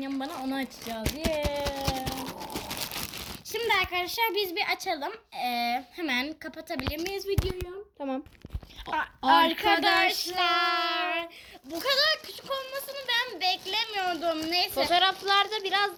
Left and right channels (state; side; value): identical; both; correlation 1.00